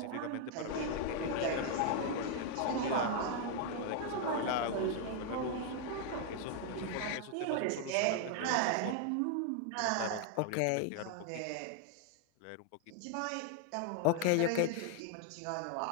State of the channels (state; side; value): different; both; correlation 0.00